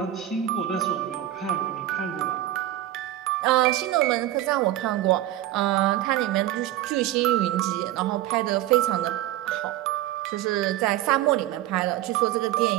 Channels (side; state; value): left; quieter; 13.7 dB